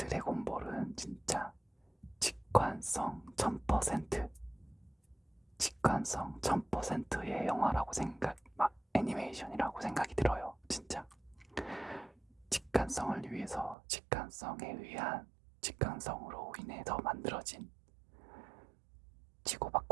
진짜 직관성 1000%, 직관성 1000%의 영화라고 애니메이션이라고 생각이 들어요. 진짜 직관성을 위해서 직관성에 의한 직관성으로 인해서 만들어진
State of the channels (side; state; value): left; drops out; at 13.8 s